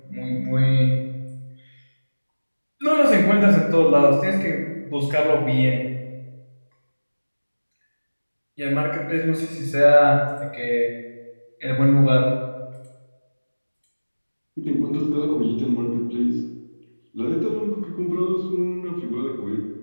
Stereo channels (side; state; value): both; inverted; correlation -1.00